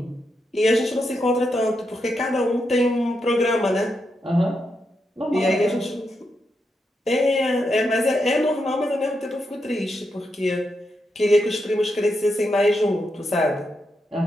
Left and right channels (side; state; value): both; normal; correlation 0.84